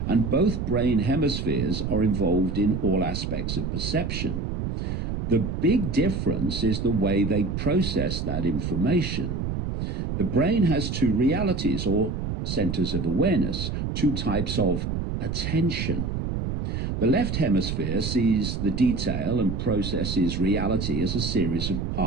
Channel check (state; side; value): noise; right; rumble, 3 dB below the sound